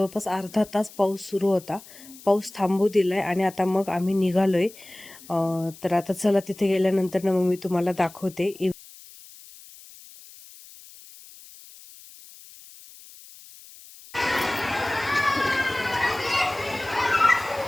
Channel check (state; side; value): noise; left; hiss, 20 dB below the sound